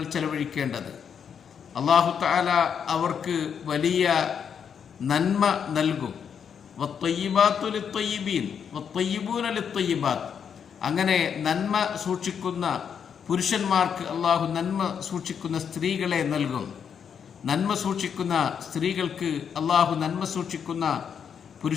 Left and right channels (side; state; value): right; quieter; 7.4 dB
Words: ചെലവഴിക്കേണ്ടത്. അല്ലാഹു തആല അവർക്ക് വലിയ നന്മ നൽകും. വത്വയ്യിബാത്തു ലിത്വയ്യിബീൻ വത്വയ്യിബൂന ലിത്വയ്യിബാത്ത്, അങ്ങനെ നന്മ സൂക്ഷിക്കുന്ന പുരുഷന്മാർക്ക് അള്ളാഹു നന്മ സൂക്ഷിക്കുന്ന സ്ത്രീകളെ നൽകും. നന്മ സൂക്ഷിക്കുന്ന സ്ത്രീകൾക്ക് അള്ളാഹു നന്മ സൂക്ഷിക്കുന്ന